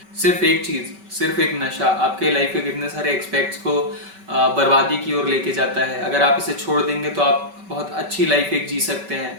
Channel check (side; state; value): left; late; 5.2 ms